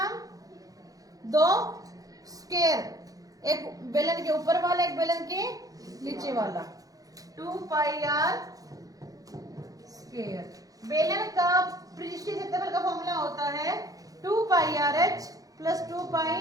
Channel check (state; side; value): late; left; 0.17 ms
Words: दो स्क्वायर, एक बेलन के ऊपर वाला एक बेलन के नीचे वाला, 2 पाई आर स्क्वायर। बेलन का पृष्ठीय क्षेत्रफल का फॉर्मूला होता है 2 pi r h plus 2